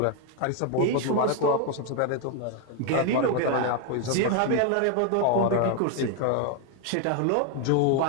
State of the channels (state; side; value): different; both; correlation 0.01